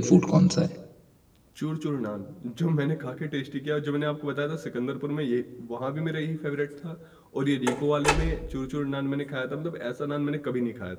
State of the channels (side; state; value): both; identical; correlation 1.00